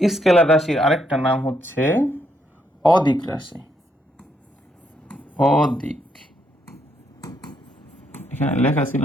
স্কেলার রাশির আরেকটা নাম হচ্ছে অদিক রাশি। অদিক এখানে লেখা ছিল,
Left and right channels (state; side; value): normal; both; correlation 0.75